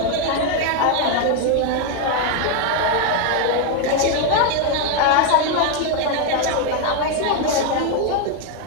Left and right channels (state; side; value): different; both; correlation 0.01